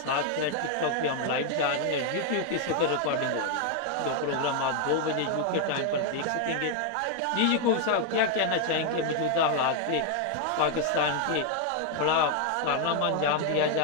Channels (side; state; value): both; different; correlation 0.00